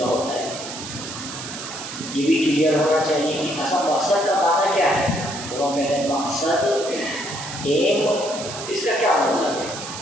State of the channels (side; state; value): right; noise; hiss, 9 dB below the sound